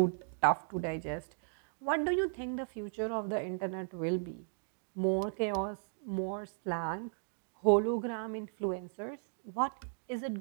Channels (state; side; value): silent; left; digital silence